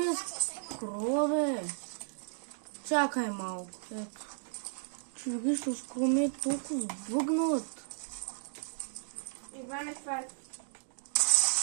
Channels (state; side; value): silent; left; digital silence